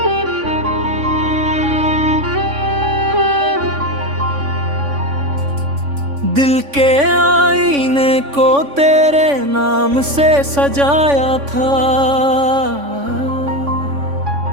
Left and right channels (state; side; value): late; left; 3.5 ms